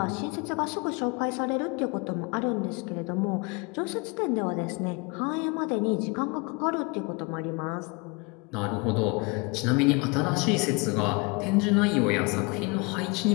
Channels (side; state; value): right; quieter; 29.1 dB